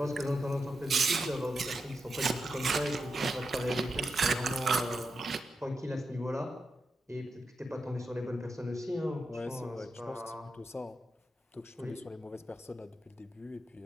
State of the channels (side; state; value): both; normal; correlation 0.87